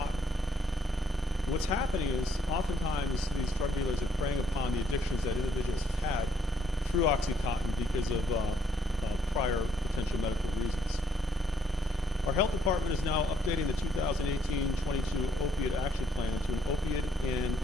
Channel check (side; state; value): both; normal; correlation 0.69